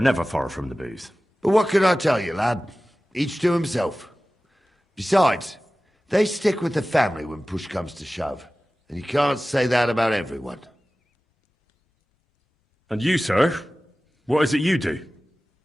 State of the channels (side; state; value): both; normal; correlation 0.97